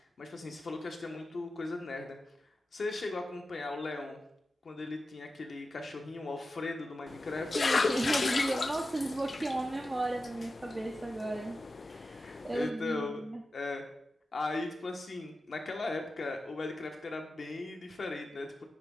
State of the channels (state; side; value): normal; both; correlation 0.92